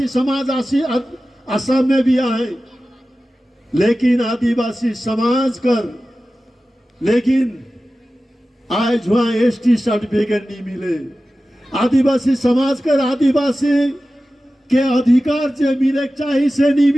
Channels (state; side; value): normal; both; correlation 0.95